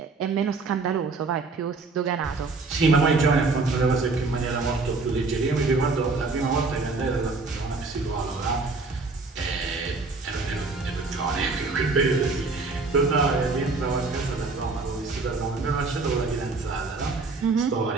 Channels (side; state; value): left; quieter; 3.8 dB